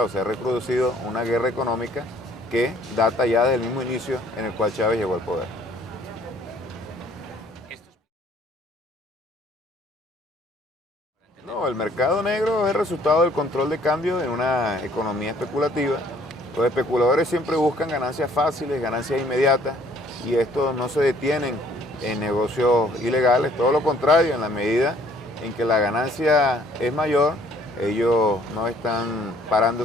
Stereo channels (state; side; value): normal; both; correlation 0.60